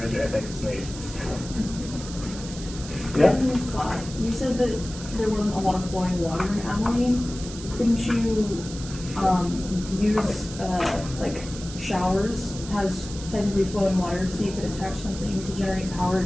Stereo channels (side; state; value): right; noise; hiss, 13 dB below the sound